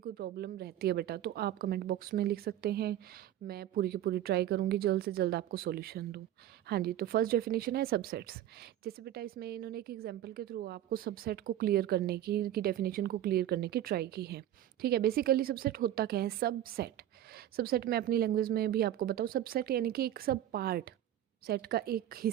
प्रॉब्लम रहती है बेटा, तो आप कमेंट बॉक्स में लिख सकते हैं। मैं पूरी की पूरी ट्राई करूँगी जल्द से जल्द आपको सॉल्यूशन दूँ। हाँ जी, तो फर्स्ट डेफिनेशन है सबसेट्स। जैसे बेटा इसमें इन्होंने एक एग्जांपल के थ्रू आपको सबसेट को क्लियर करने की डेफिनेशन को क्लियर करने की ट्राई की है। ठीक है, बेसिकली सबसेट होता क्या है? सबसेट, सबसेट मैं अपनी लैंग्वेज में भी आपको बताऊँ। सबसेट यानी कि एक सब पार्ट, सेट का एक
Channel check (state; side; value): quieter; left; 12.1 dB